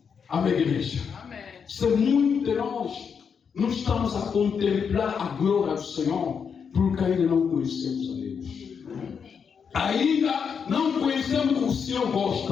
Amém, igreja? Amém. Se muitos de nós não estamos a contemplar a glória do Senhor, porque ainda não conhecemos a Deus. Ainda não conhecemos o que o Senhor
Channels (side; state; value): right; quieter; 6.6 dB